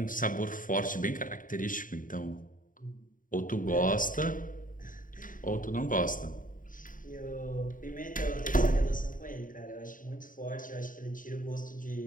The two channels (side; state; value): right; late; 0.39 ms